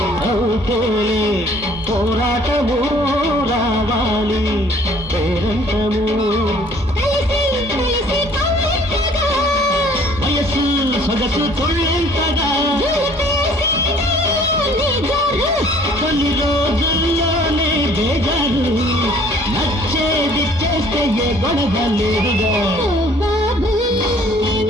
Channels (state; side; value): normal; both; correlation 0.55